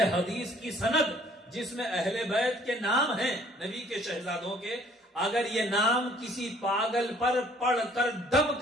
حدیث کی سند جس میں اہل بیت کے نام ہیں نبی کے شہزادوں کے، اگر یہ نام کسی پاگل پر پڑھ کر دم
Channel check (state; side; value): normal; both; correlation 0.59